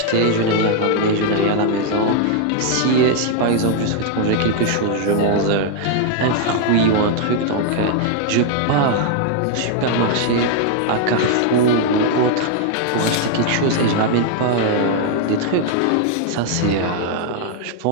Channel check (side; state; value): both; different; correlation 0.00